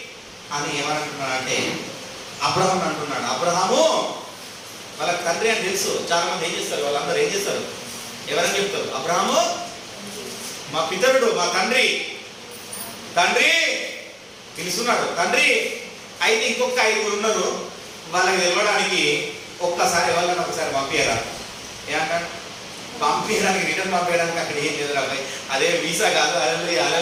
అని ఏమనంటున్నాడు అంటే అబ్రహాం అంటున్నాడు. అబ్రహాము వాళ్ళకి తండ్రి అని తెలుసు. చాలా మంది ఏం చేస్తారు? వాళ్ళందరూ ఏం చేస్తారు? ఎవరని చెప్తారు? అబ్రహాము మా పితరుడు, మా తండ్రి. తండ్రి పిలుస్తున్నాడు. తండ్రి అయితే ఇంకొక 5 ఉన్నారు. వాళ్ళకి తెలవడానికి ఒక్కసారి వాళ్ళని ఒకసారి పంపించరా? ఏమంటాడు? పంపించడానికి రిటర్న్ పంపించడానికి అక్కడ ఏం లేదు రాబాయ్. అదే వీసా కాదు. అలలుయ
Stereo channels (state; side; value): identical; both; correlation 1.00